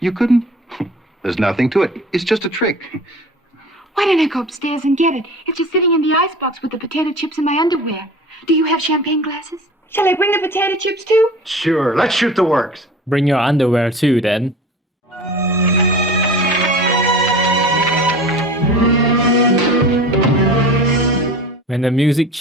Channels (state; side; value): normal; both; correlation 0.38